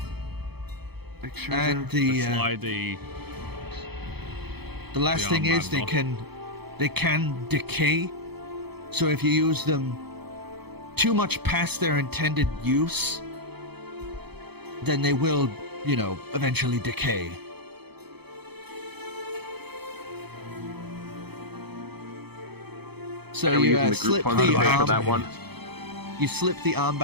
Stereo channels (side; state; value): left; late; 0.98 ms